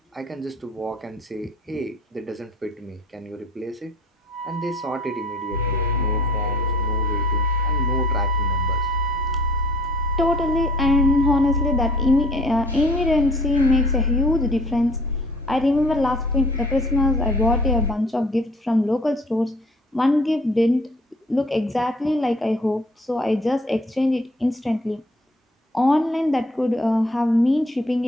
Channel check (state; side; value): normal; both; correlation 0.54